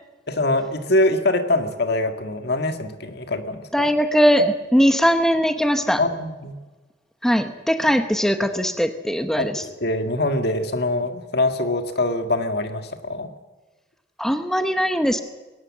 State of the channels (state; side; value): normal; both; correlation 0.50